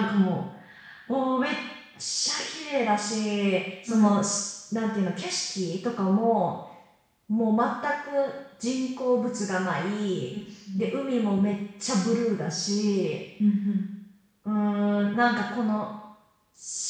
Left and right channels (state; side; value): identical; both; correlation 1.00